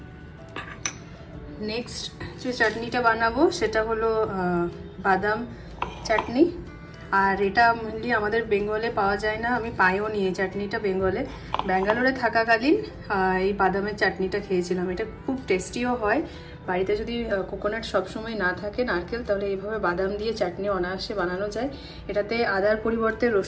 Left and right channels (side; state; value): both; identical; correlation 1.00